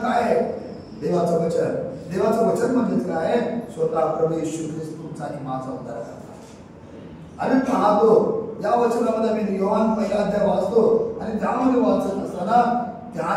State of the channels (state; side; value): identical; both; correlation 1.00